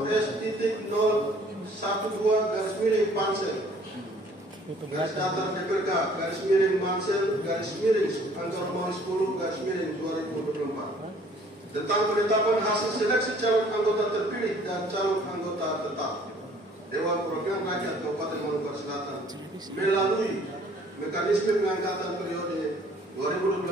S.012-Pansel garis datar DPRK garis miring Mansel garis miring angka nomor 10 garis miring 2024 tentang penetapan hasil seleksi calon anggota terpilih dan calon anggota tetap Dewan Perwakilan Rakyat Kabupaten Manokwari Selatan melalui mekanisme pengangkatan periode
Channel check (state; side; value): normal; both; correlation 0.56